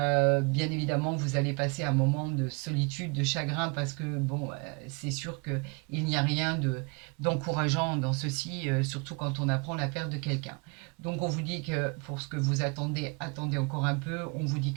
évidemment, vous allez passer un moment de solitude, de chagrin, parce que bon, c'est sûr qu'il n'y a rien d'encourageant dans ceci, surtout quand on apprend la perte de quelqu'un. Donc on vous dit que pour ce que vous attendez, attendez encore un peu. On vous dit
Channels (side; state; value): left; quieter; 32.3 dB